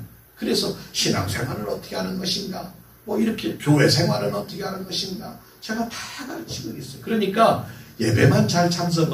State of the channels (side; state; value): both; identical; correlation 1.00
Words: 그래서 신앙생활을 어떻게 하는 것인가, 뭐 이렇게 교회 생활은 어떻게 하는 것인가 제가 다 가르치고 있어요. 그러니까 예배만 잘